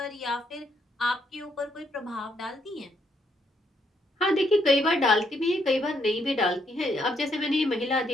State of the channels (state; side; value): normal; both; correlation 0.74